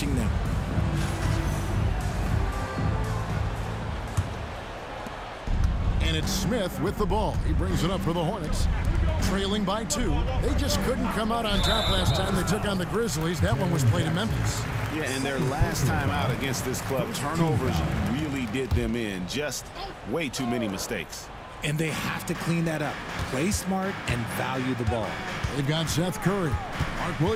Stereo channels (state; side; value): identical; both; correlation 1.00